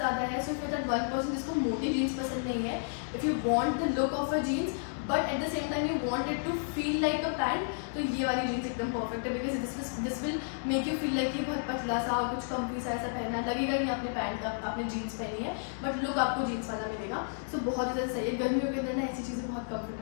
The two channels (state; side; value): silent; right; digital silence